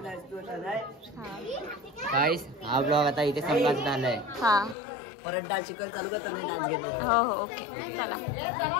गाइस हा ब्लॉग आता इथे संपत झालाय हा परत डान्स शिकायला चालू करतो नाही डान्स घेणार हो हो ओके चला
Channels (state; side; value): drops out; right; at 4.8 s